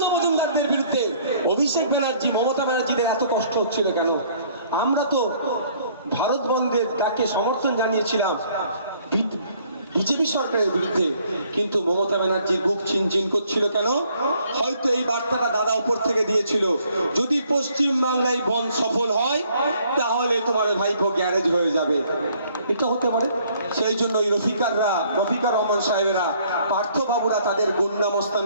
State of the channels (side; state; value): both; inverted; correlation -0.62